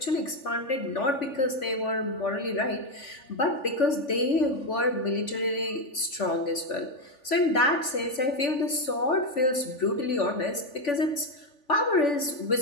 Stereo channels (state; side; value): late; right; 3.5 ms